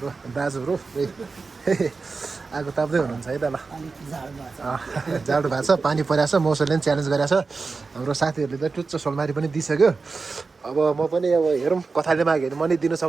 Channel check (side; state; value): left; quieter; 4.3 dB